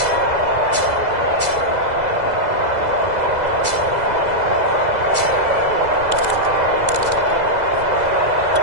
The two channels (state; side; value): late; left; 2.0 ms